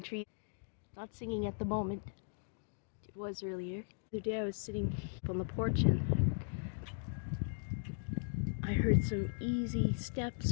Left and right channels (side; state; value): right; silent; digital silence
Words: tree. Not singing at the moment. It was earlier. The other day I was sitting on the porch and I heard some easy steps